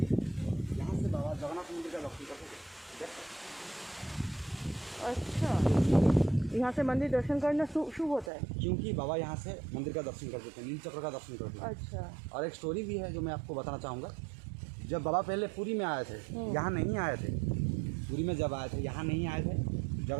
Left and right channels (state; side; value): drops out; left; at 8.3 s